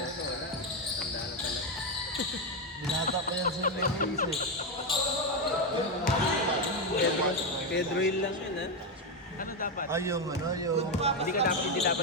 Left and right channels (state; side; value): normal; both; correlation 0.08